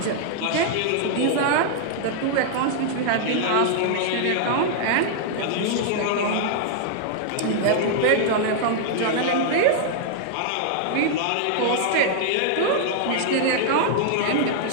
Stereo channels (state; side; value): different; both; correlation -0.01